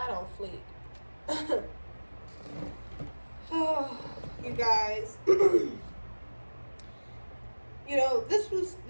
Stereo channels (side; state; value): both; inverted; correlation -1.00